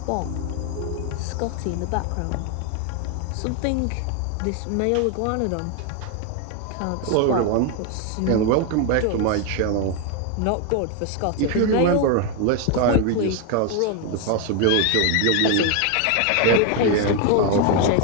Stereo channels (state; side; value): different; both; correlation 0.01